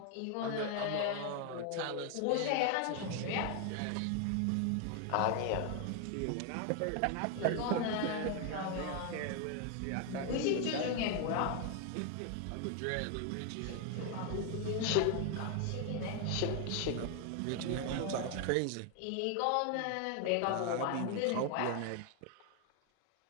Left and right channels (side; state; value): both; different; correlation 0.01